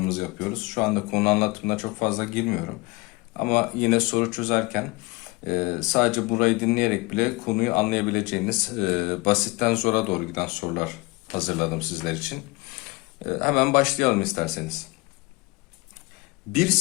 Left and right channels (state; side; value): quieter; right; 24.5 dB